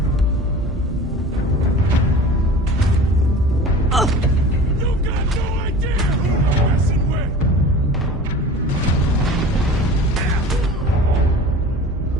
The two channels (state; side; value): normal; both; correlation 0.39